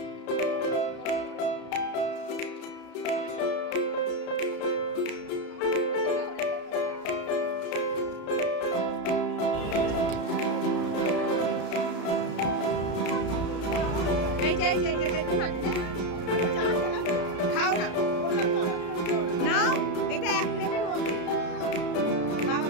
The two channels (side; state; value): right; late; 33 ms